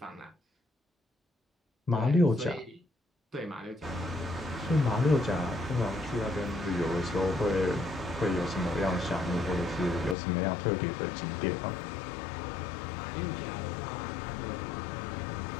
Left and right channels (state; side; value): drops out; right; at 10.2 s